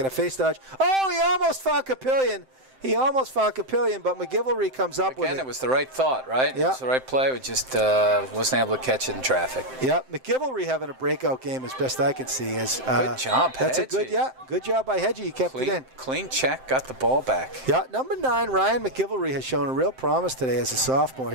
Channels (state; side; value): late; left; 7.7 ms